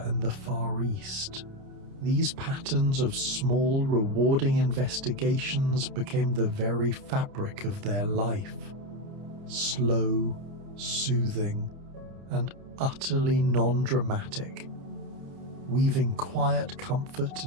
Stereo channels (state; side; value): late; left; 30 ms